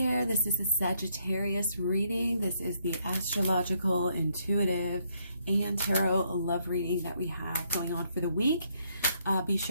this is a Sagittarius reading. This is the astrological, intuitive, and tarot love reading that we have going on for the week. Be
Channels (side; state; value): both; inverted; correlation -0.72